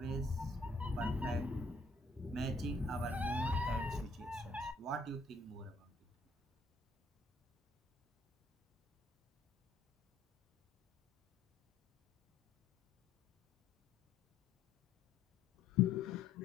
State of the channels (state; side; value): quieter; right; 3.0 dB